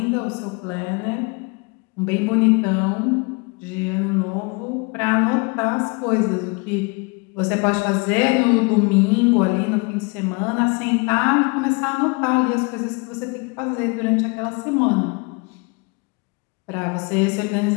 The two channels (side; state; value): right; quieter; 30.5 dB